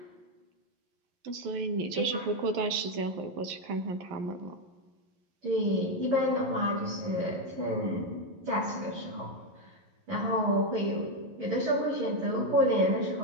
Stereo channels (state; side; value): late; left; 11 ms